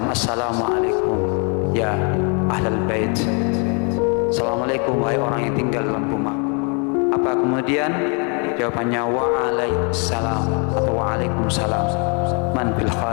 assalamualaikum ya ahlal bait, assalamualaikum wahai orang yang tinggal dalam rumah. Apa kemudian jawabannya? Waalaikumsalam atau waalaikumsalam. Man fil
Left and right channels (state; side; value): quieter; right; 36.5 dB